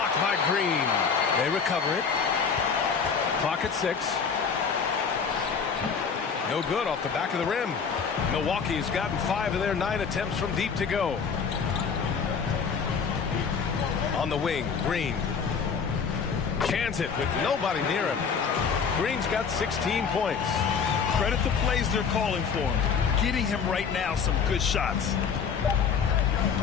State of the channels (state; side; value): quieter; right; 6.1 dB